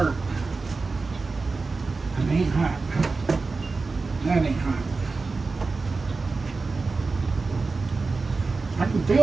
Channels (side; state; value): left; quieter; 4.0 dB